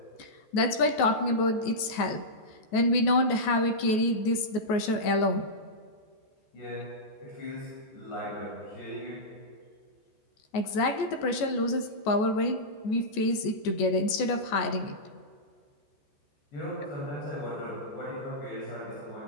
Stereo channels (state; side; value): late; right; 14 ms